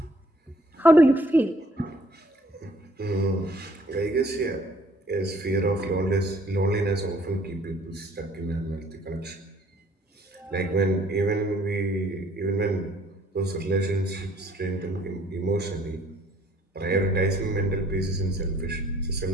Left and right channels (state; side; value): normal; both; correlation 0.60